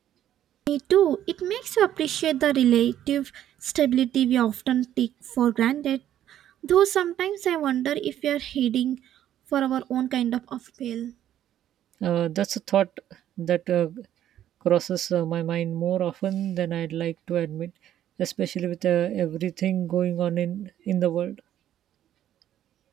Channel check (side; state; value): left; quieter; 11.5 dB